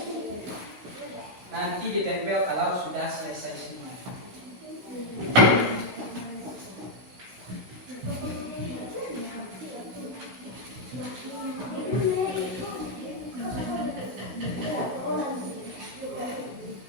Nanti ditempel kalau sudah selesai semua.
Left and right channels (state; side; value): late; left; 16 ms